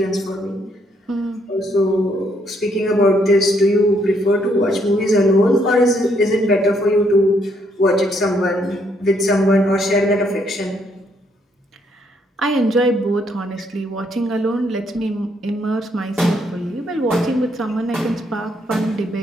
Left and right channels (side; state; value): both; normal; correlation 0.72